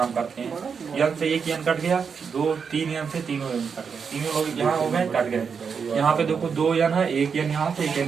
करते हैं। n से एक n कट गया, 3 n से 3 n कट गया, तीनों लोग यहाँ हो गए कट गए। यहाँ पे देखो 2 n है, 1 n यहाँ से 1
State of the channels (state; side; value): quieter; left; 6.1 dB